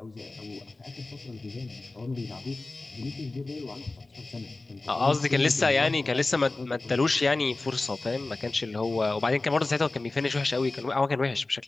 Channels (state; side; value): quieter; right; 3.2 dB